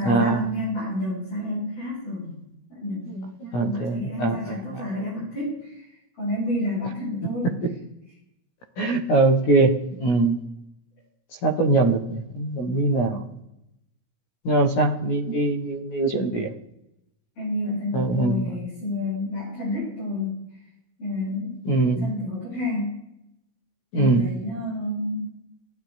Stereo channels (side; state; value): right; late; 16 ms